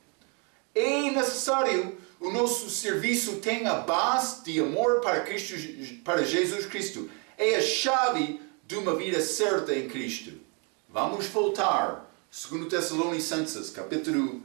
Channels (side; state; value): left; quieter; 34.9 dB